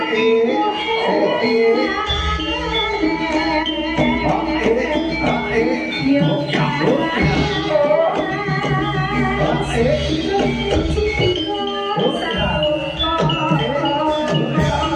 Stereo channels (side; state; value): both; identical; correlation 1.00